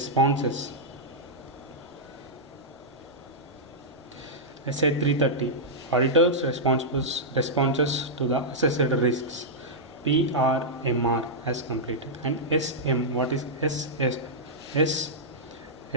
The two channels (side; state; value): both; normal; correlation -0.10